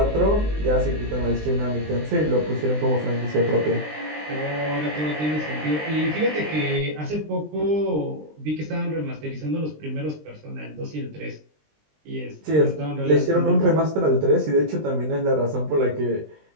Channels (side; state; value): left; late; 20 ms